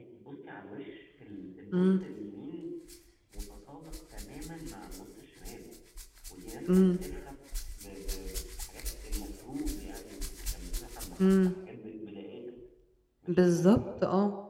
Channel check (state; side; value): identical; both; correlation 1.00